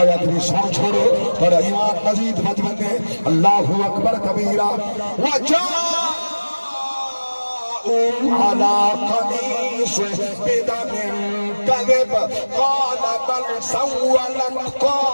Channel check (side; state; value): both; inverted; correlation -1.00